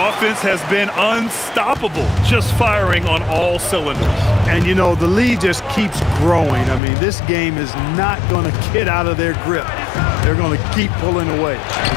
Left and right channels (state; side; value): drops out; right; at 6.8 s